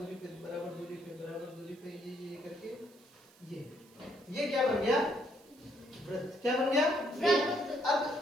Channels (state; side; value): noise; right; hiss, 27 dB below the sound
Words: पे, बराबर दूरी पे, बराबर दूरी पे, ये करके ये क्या बन गया? वृत्त। क्या बन गया? वृत्त।